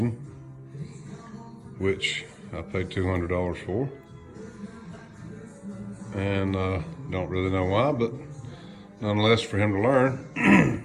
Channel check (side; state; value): both; identical; correlation 1.00